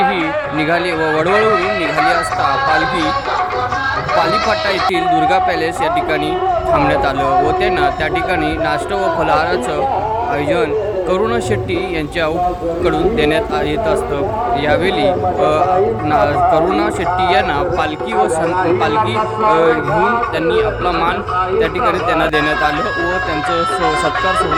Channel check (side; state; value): both; identical; correlation 1.00